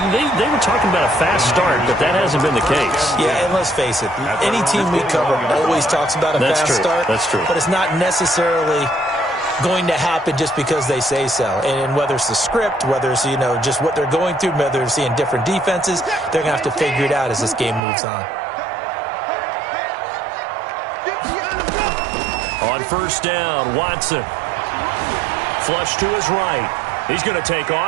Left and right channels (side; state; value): left; drops out; at 17.8 s